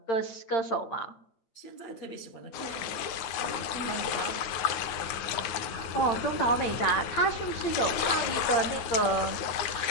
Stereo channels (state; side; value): late; right; 9.4 ms